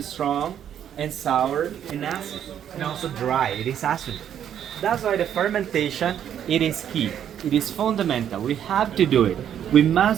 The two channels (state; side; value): quieter; left; 9.6 dB